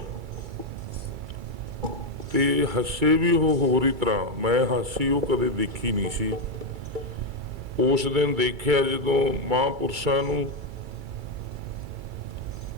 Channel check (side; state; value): left; late; 2.3 ms